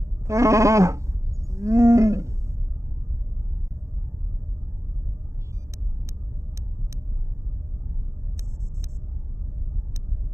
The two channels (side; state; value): left; late; 0.15 ms